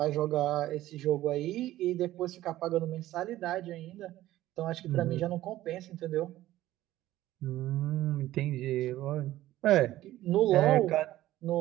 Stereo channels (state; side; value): quieter; left; 14.9 dB